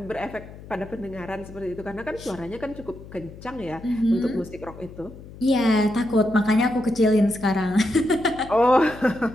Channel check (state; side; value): noise; left; hum, 17 dB below the sound